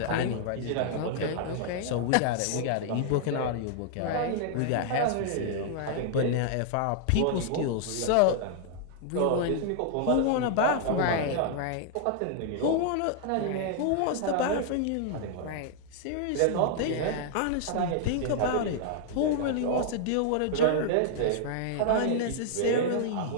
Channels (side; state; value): both; different; correlation -0.01